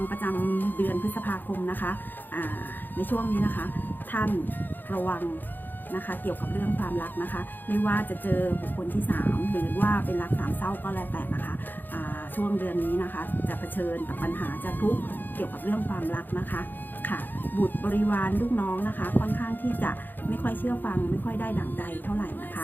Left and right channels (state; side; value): late; right; 0.090 ms